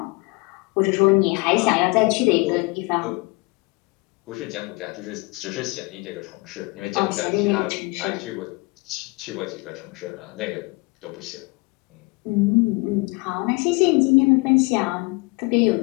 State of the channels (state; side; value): quieter; right; 26.8 dB